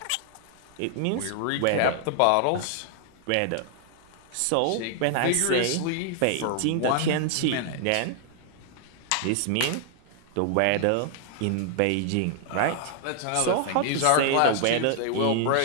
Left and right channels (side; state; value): both; different; correlation 0.00